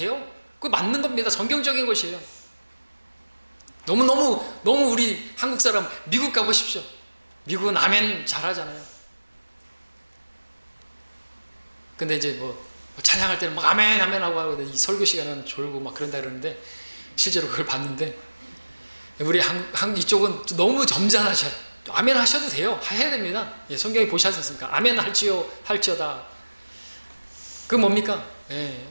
그거 맞는 겁니다. 성경적인 것이에요. 너무 우리 한국 사람 미국 가보십시오. 미국은 아멘 잘하잖아요. 근데 이제 뭐 찬양할 때는 막 아멘 아멘 하고 이 설교 시간은 졸고 막 그런다 그러는데 실제로 그걸 봤는데 우리 한국 이쪽은 너무 점잖으셔요. 아멘 하셔도 돼요. 해야 됩니다. 성경에 보시지 않습니까? 아멘 할지어다. 그 뭡니까?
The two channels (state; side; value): inverted; both; correlation -1.00